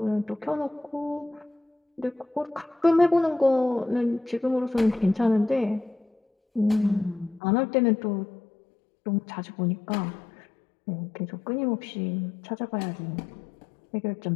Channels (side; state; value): right; drops out; at 7.4 s